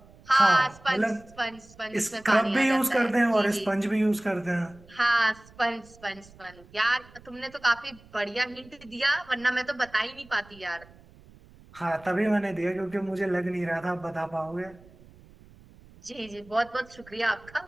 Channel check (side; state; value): right; noise; rumble, 24 dB below the sound